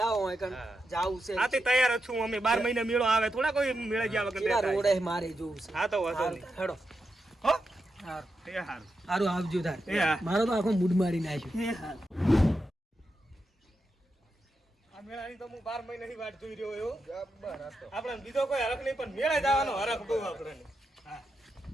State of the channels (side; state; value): both; normal; correlation 0.87